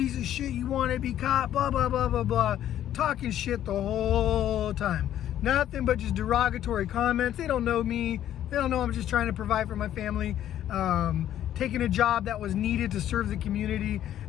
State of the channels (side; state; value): right; quieter; 11.5 dB